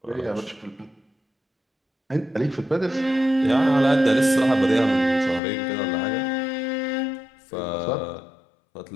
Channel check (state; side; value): drops out; right; at 5.4 s